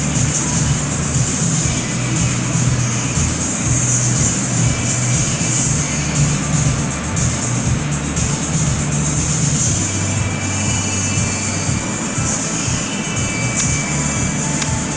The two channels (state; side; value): identical; both; correlation 1.00